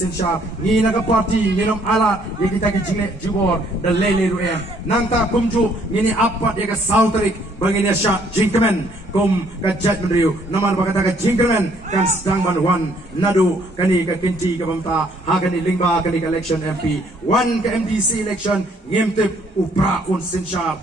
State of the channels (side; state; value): both; normal; correlation 0.65